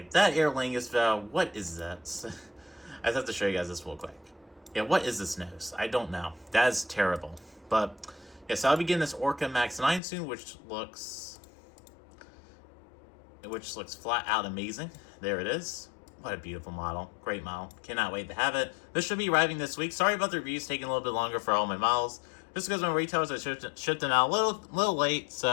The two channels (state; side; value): drops out; right; at 10.0 s